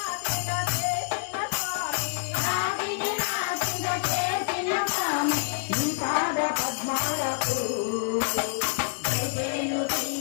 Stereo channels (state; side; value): silent; right; digital silence